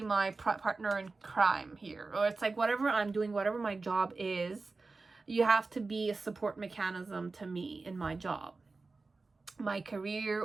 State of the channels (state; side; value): quieter; left; 3.8 dB